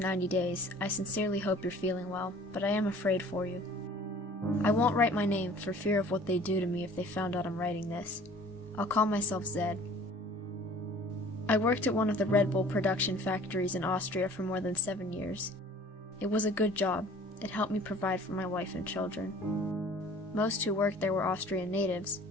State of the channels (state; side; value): normal; both; correlation 0.49